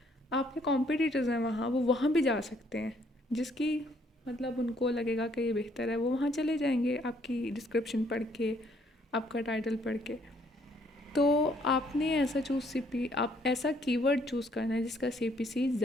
आपके कॉम्पिटिटर्स हैं वहाँ, वो वहाँ भी जा सकते हैं, जिसकी मतलब उनको लगेगा कि ये बेहतर है, वो वहाँ चले जाएंगे आपकी डिस्क्रिप्शन पढ़ के, आपका टाइटल पढ़ के। तो आपने आप ऐसा कीवर्ड चूज़ करना है जिसका सीपीसी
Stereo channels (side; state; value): both; normal; correlation 0.66